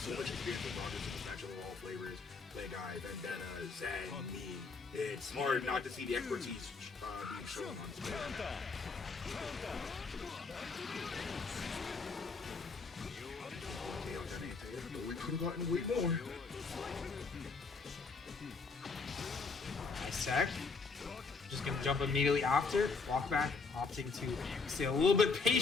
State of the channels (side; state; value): right; quieter; 4.4 dB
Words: much experience with Rogers in this matchup of all flavors. Play Guy, Vendetta, Zen, me. It's hard not to see the expertise being shown on screen. We could have gotten way more. Nice sec. Just gonna jump immediately after. Walk back, opting to stay a little bit